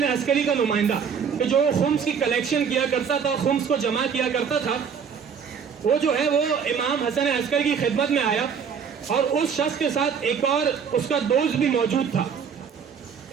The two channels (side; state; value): left; quieter; 6.8 dB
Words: عسکری کا نمائندہ کہ جو خمس کی کلیکشن کیا کرتا تھا، خمس کو جمع کیا کرتا تھا، وہ جو ہے وہ امام حسن عسکری کی خدمت میں آیا اور اس شخص کے ساتھ ایک اور اس کا دوست بھی موجود تھا۔